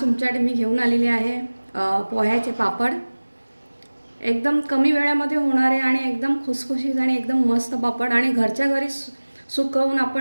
मी घेऊन आलेली आहे पोह्याचे पापड। एकदम कमी वेळामध्ये होणारे आणि एकदम खुसखुशीत आणि एकदम मस्त पापड आणि घरच्या घरी सुकवून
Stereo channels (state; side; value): inverted; both; correlation -1.00